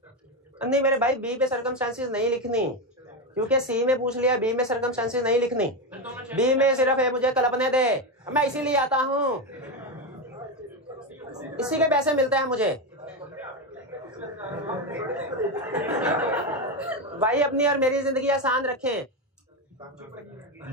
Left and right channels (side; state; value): both; normal; correlation 0.12